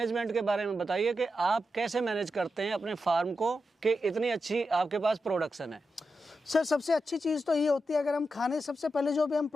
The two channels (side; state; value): both; normal; correlation 0.88